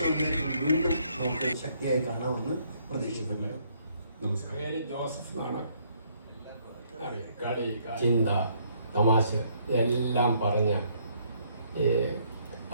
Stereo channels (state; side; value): inverted; both; correlation -0.68